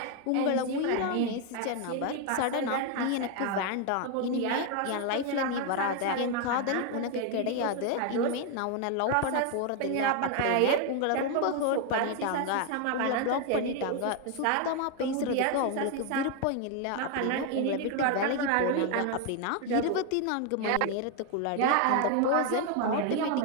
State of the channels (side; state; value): both; different; correlation 0.01